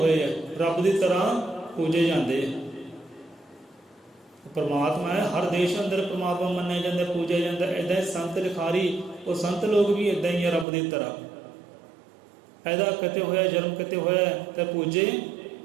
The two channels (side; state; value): left; drops out; at 10.7 s